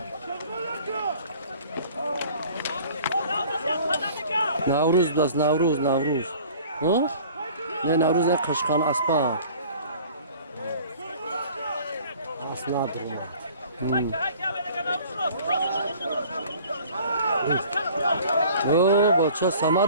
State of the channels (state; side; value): inverted; both; correlation -0.49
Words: Navruz biraz Navruz. Ha? Ne Navruz ne kaşkan aspa. Asnadır o. Baça